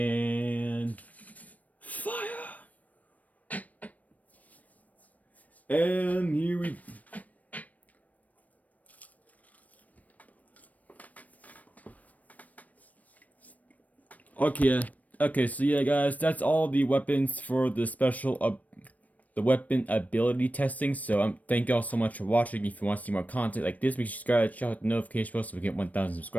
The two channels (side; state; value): right; late; 0.072 ms